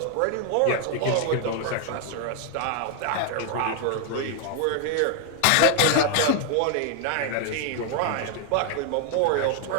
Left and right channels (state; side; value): different; both; correlation 0.00